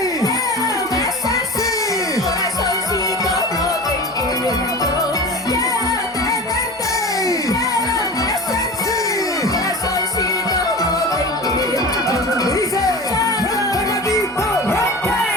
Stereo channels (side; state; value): both; normal; correlation 0.33